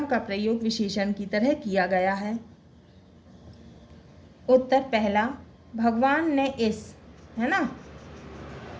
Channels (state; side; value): identical; both; correlation 1.00